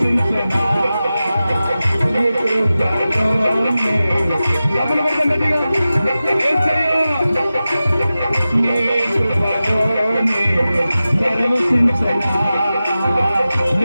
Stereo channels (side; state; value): both; inverted; correlation -0.94